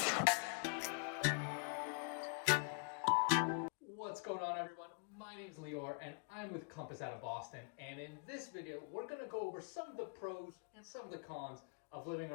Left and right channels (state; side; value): quieter; right; 37.7 dB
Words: What's going on, everyone? My name's Lior and I'm with Compass out of Boston, and in this video we're going to go over some of the pros and some of the cons of living